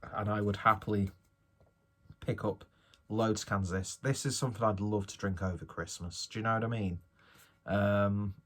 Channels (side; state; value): both; identical; correlation 1.00